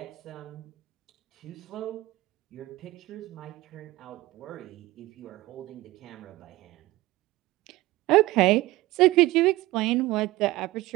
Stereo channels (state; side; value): quieter; left; 18.8 dB